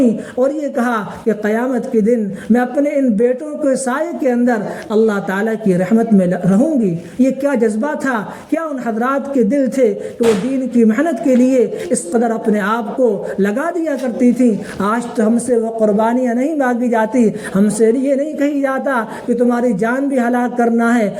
اور یہ کہا کہ قیامت کے دن میں اپنے ان بیٹوں کے سائے کے اندر اللہ تعالیٰ کی رحمت میں رہوں گی۔ یہ کیا جذبہ تھا، کیا ان حضرات کے دل تھے کہ وہ دین کی محنت کے لیے اس قدر اپنے آپ کو لگا دیا کرتی تھی۔ آج تو ہم سے وہ قربانیاں نہیں مانگی جاتی، ہم سے یہ نہیں کہی جاتا کہ تمہاری جان بھی ہلاک کرنا ہے،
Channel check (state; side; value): identical; both; correlation 1.00